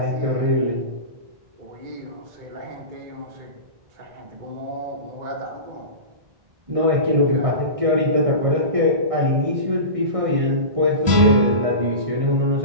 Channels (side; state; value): left; late; 1.6 ms